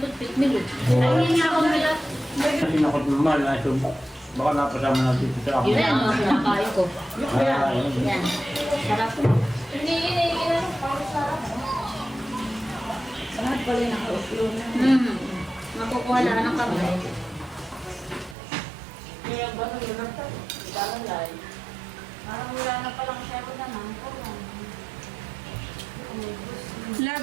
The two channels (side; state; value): left; drops out; at 18.4 s